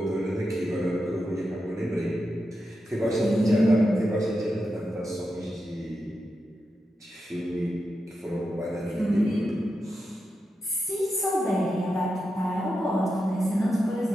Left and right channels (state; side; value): normal; both; correlation 0.88